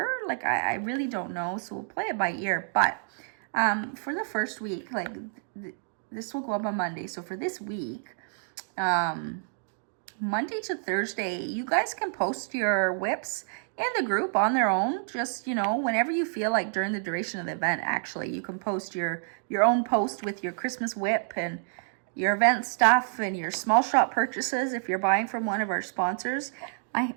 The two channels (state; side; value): silent; left; digital silence